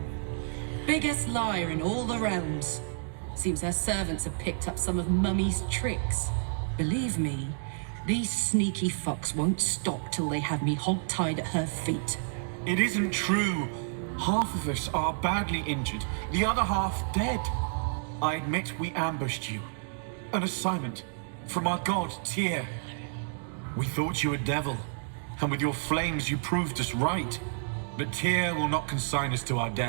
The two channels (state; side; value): silent; left; digital silence